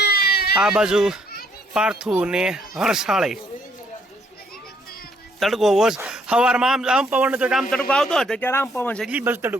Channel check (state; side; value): normal; both; correlation 0.68